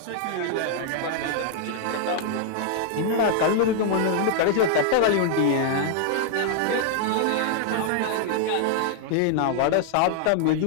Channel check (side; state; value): both; different; correlation 0.00